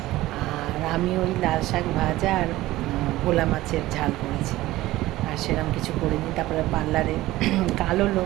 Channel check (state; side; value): quieter; left; 17.0 dB